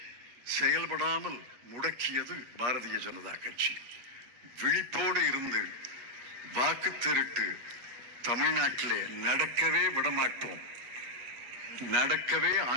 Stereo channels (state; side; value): late; left; 8.2 ms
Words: செயல்படாமல் முடக்கியது பாரதிய ஜனதா கட்சி. விழிப்போடு இருந்து வாக்கு திருட்டு தமிழ்நாட்டிலே நடக்கவே விடமாட்டோம், நடக்கவே